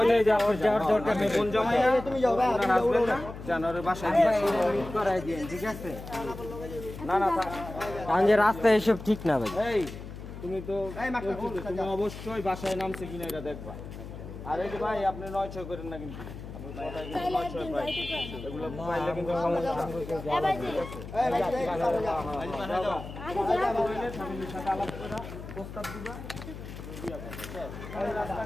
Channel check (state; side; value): noise; left; hum, 11 dB below the sound